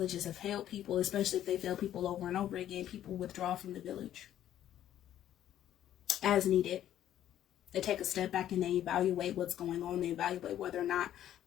have failed people, especially if they fail people over and over again, people withdraw from the village as needed. They take a step back and they evaluate what's going on. They evaluate whether or not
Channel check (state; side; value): quieter; right; 11.6 dB